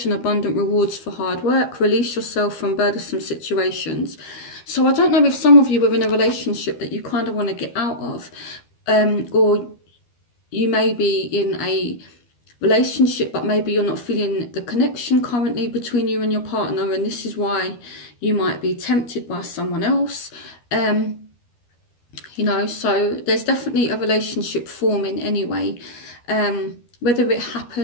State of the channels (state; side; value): late; right; 12 ms